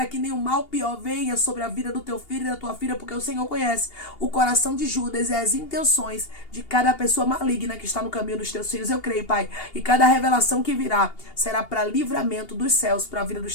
que nenhum mal pior venha sobre a vida do teu filho e da tua filha, porque o Senhor conhece o coração de Judas e as intenções de cada pessoa maligna que está no caminho dos teus filhos. Eu creio, Pai, e cada revelação que virá será para livramento dos céus, para a vida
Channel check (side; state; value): right; late; 2.8 ms